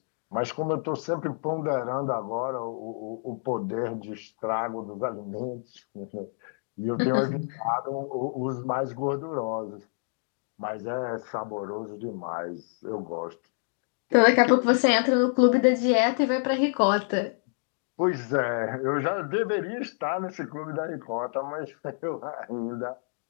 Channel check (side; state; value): right; silent; 59 dB below the other